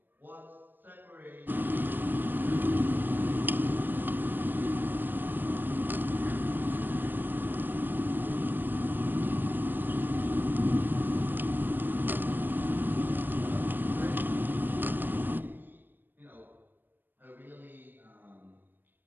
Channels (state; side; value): late; left; 0.093 ms